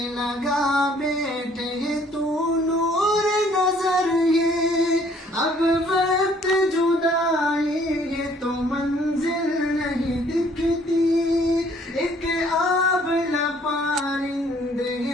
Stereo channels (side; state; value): both; normal; correlation 0.60